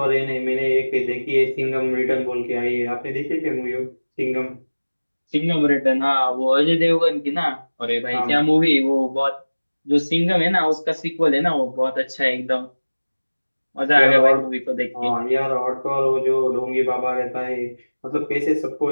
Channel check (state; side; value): inverted; both; correlation -1.00